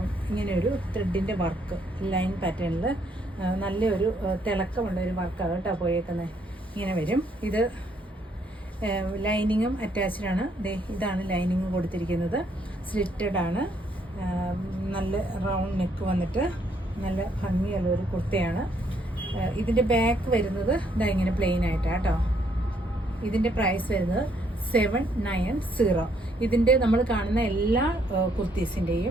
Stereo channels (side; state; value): both; normal; correlation 0.70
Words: ഇങ്ങനെ ഒരു ത്രെഡിൻ്റെ വർക്ക് ലൈൻ പാറ്റേണിൽ നല്ലൊരു തിളക്കമുള്ള ഒരു വർക്കാണ് കേട്ടോ പോയേക്കുന്നത്. ഇങ്ങനെ വരും. ഇത് ലൈനിങ്ങും അറ്റാച്ച്ഡാണ്. ഇതാണ് ലൈനിങ് കൊടുത്തിരിക്കുന്നത്. സ്ലിറ്റഡ് ആണ്. നല്ല റൗണ്ട് നെക്ക് വന്നിട്ട് നല്ല ഭംഗിയുള്ള ഒരു കുർത്തയാണ്. ഇതിൻ്റെ ബാക്ക് വരുന്നത് ഇതാ ഇങ്ങനെ പ്ലെയിൻ ആയിട്ടാണ് കേട്ടോ. ഇതിൻ്റെ പ്രൈസ് വരുന്നത് 790. ഇതിൻ്റെ നമ്മൾ കാണുന്ന എല്ലാ